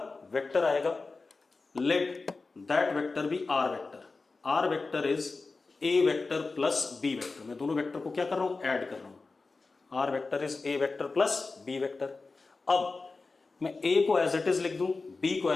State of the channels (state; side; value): quieter; right; 3.9 dB